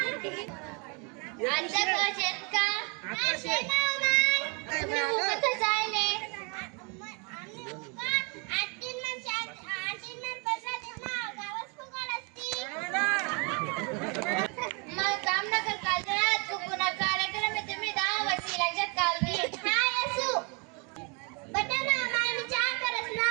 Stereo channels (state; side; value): quieter; left; 33.5 dB